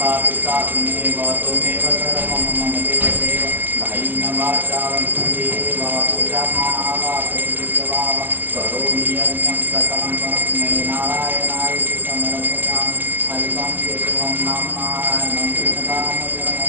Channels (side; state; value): left; late; 0.092 ms